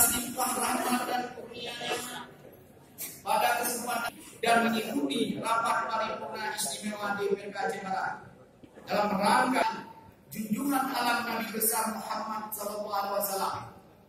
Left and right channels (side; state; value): both; identical; correlation 1.00